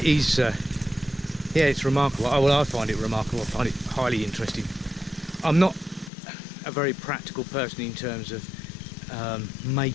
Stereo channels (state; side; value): drops out; right; at 6.1 s